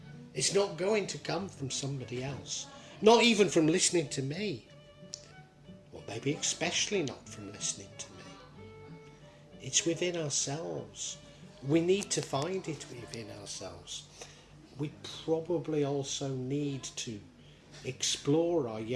It's not going to come from somebody else. Not even from listening to me. Well, maybe especially not from listening to me. It's within ourselves. We need to find it within ourselves. We probably also need to explore our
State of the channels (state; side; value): identical; both; correlation 1.00